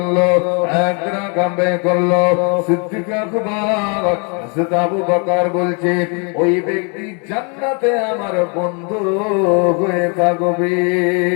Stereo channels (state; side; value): quieter; right; 35.9 dB